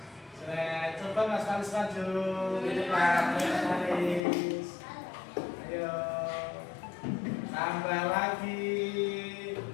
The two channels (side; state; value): right; drops out; at 4.2 s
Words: saya coba Mas Faris maju di depan. Ayo. Tambah lagi